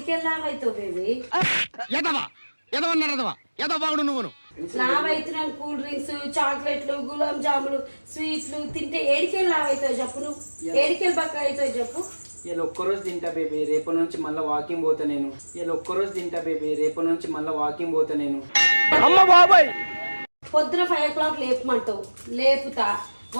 లావ్ అవుతావు బేబీ. లావ్ అవుతున్నాను కూల్ డ్రింక్స్, చాక్లెట్లు, గులాబ్ జాములు, స్వీట్లు తింటే ఏడికెళ్ళి లావ్ అవుతావు చెప్పు. నువ్వు ఏడికెళ్ళి బక్క అవుతావు చెప్పు. ఇలా ఒక్కరోజు తింటా బేబీ, రేపటి నుంచి మళ్ళీ వాకింగ్ పోతా నేను. ఇలా ఒక్కరోజు తింటా బేబీ, రేపటి నుంచి మళ్ళీ వాకింగ్ పోతా నేను. పొద్దున 5 o'clock లేపమంటావు, లేపుతా.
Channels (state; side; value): inverted; both; correlation -1.00